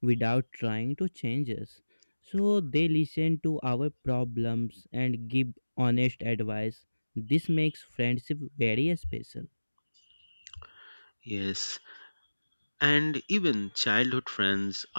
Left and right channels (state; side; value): inverted; both; correlation -1.00